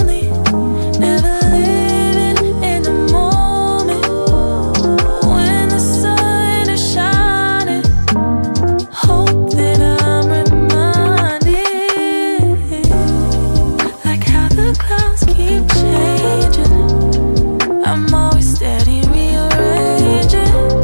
never living in the moment. When the sun is shining, hope that I'm reminded, like how the clouds keep changing. I'm always steady rearranging,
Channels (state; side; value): inverted; both; correlation -1.00